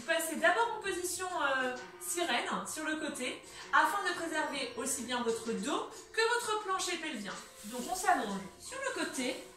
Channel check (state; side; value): identical; both; correlation 1.00